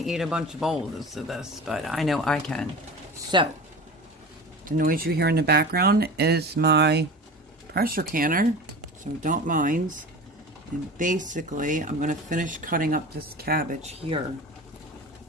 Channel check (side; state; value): both; normal; correlation 0.34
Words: a bunch of bowls of this, but I know I can. So, the noise you hear in the background is my pressure canner, so don't mind. And basically, I'm going to finish cutting up this cabbage here.